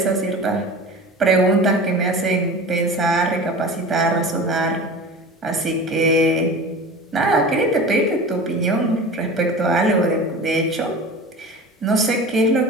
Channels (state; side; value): normal; both; correlation 0.35